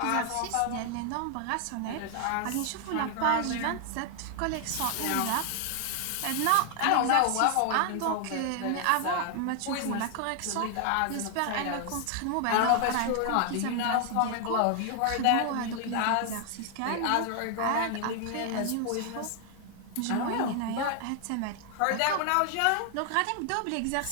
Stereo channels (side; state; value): both; different; correlation 0.00